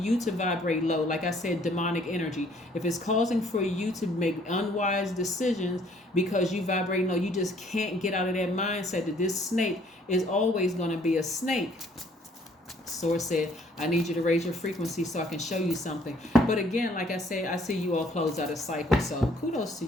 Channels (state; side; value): normal; both; correlation 0.61